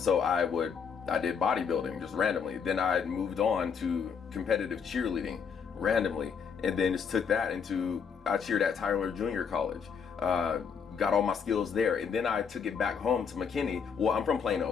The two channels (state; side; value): quieter; right; 6.5 dB